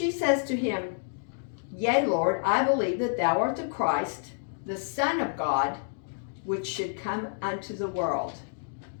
says to him, Yea, Lord, I believe that thou art the Christ, the Son of God, which should come unto the world.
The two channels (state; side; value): silent; right; digital silence